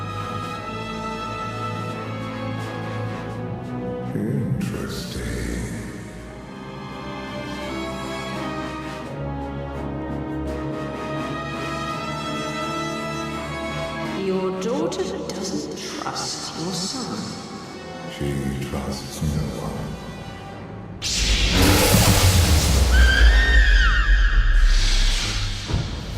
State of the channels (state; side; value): identical; both; correlation 1.00